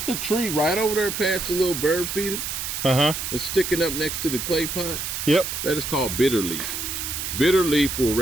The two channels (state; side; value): noise; right; hiss, 4 dB below the sound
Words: a tree right over there past the little bird feeder. It's sticking up next to the clay pot. Yep. That is called bitter leaf. Bitter leaf will